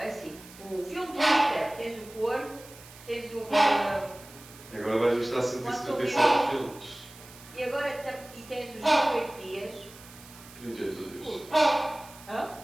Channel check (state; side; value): noise; right; hiss, 20 dB below the sound